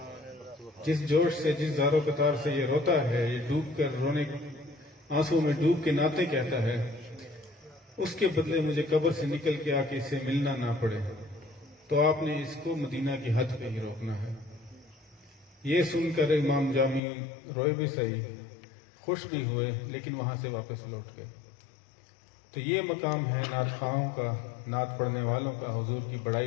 جس جوش سے، جس زار و قطار سے یہ روتا ہے، یہ ڈوب کر رونے، آنسو میں ڈوب کے نعتیں کہتا ہے، اس کے بدلے مجھے قبر سے نکل کے آ کے اس سے ملنا نہ پڑے. تو آپ نے اس کو مدینہ کی حد پہ ہی روکنا ہے. یہ سن کر امام جامی روئے بھی صحیح، خوش بھی ہوئے، لیکن وہاں سے واپس لوٹ گئے. تو یہ مقام ہے نعت خواہوں کا، نعت پڑھنے والوں کا، حضور کی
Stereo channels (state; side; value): drops out; right; at 17.0 s